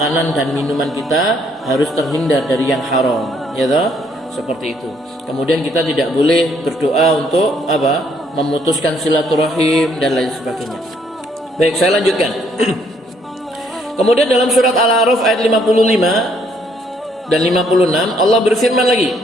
dan minuman kita harus terhindar dari yang haram, ya toh? Seperti itu. Kemudian kita tidak boleh berdoa untuk apa? Memutuskan silaturahim dan lain sebagainya. Baik, saya lanjutkan. Kemudian dalam surat Al-A'raf ayat 55 dan 56 Allah berfirman lagi,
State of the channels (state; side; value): normal; both; correlation 0.68